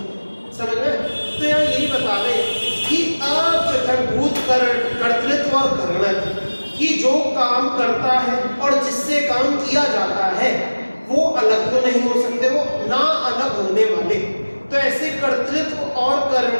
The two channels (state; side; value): inverted; both; correlation -1.00